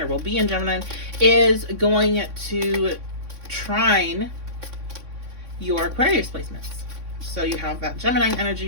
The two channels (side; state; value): left; late; 3.6 ms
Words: will be in Gemini, is going to trine your Aquarius placements. So you have that Gemini